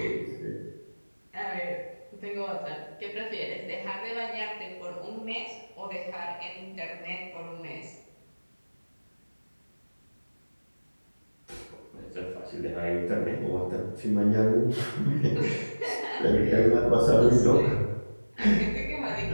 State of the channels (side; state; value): both; inverted; correlation -1.00